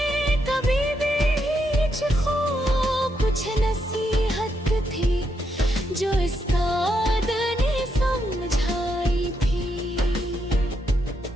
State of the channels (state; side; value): normal; both; correlation 0.80